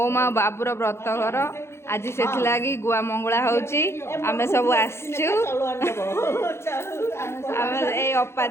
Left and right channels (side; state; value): right; late; 0.13 ms